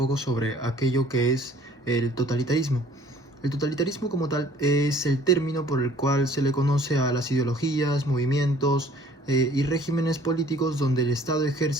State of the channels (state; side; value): normal; both; correlation 0.54